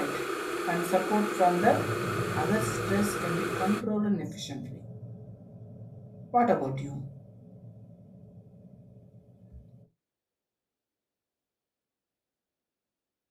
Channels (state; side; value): identical; both; correlation 1.00